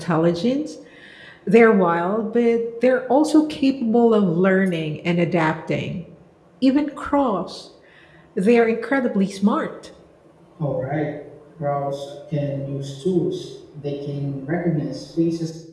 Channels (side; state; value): both; identical; correlation 1.00